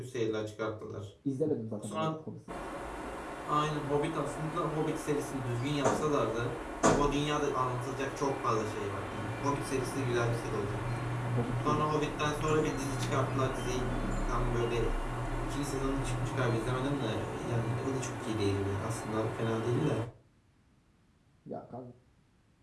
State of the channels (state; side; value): identical; both; correlation 1.00